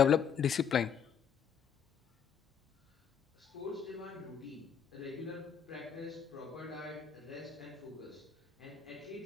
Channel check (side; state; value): right; quieter; 7.4 dB